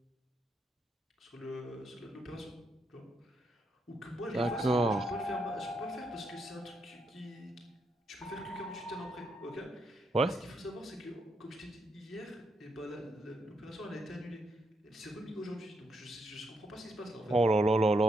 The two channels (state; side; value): normal; both; correlation 0.79